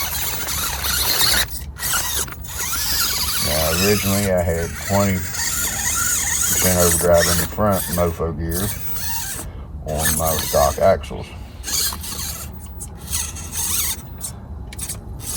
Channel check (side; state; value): both; identical; correlation 1.00